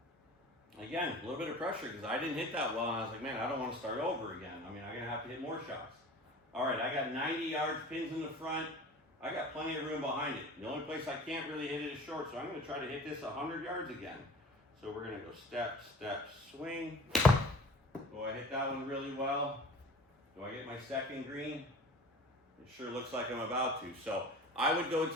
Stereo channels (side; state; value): both; normal; correlation 0.41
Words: Again, a little bit of pressure because I didn't hit that well, and I was like, man, I don't want to start over again. I mean, I'm going to have to hit more shots. All right, I got 90 yards, pins in the front. I got plenty of room behind it. The only place I can't really hit it is short, so I'm going to try to hit this 100 yards again. So we're going to go step, swing. Do I hit that one really well? Do I get my second green? It sure looks like I'm about to. So I would go